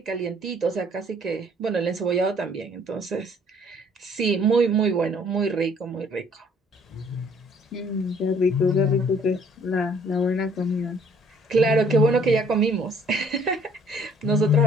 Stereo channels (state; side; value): normal; both; correlation 0.59